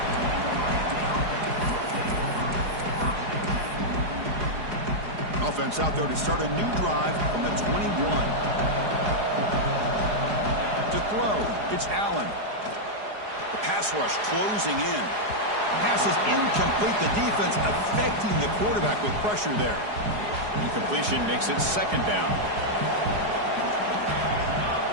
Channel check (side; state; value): left; late; 4.8 ms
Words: Offense out there to start a new drive from the 21. To throw, it's Allen. The pass rush closing in. Pass is incomplete. The defense affecting the quarterback with pressure there. Incompletion makes it 2nd down.